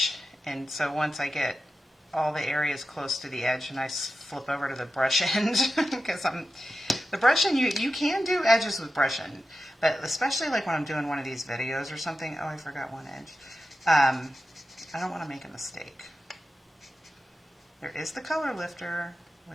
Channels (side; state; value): both; normal; correlation 0.92